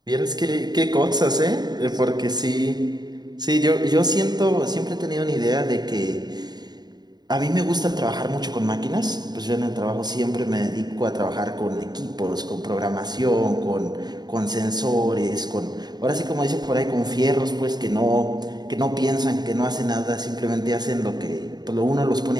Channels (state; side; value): late; left; 0.20 ms